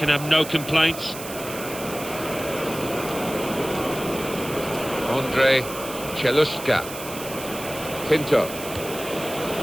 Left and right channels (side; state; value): right; noise; hiss, 11 dB below the sound